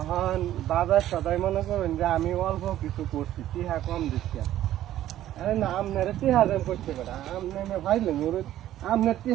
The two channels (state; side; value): quieter; left; 12.9 dB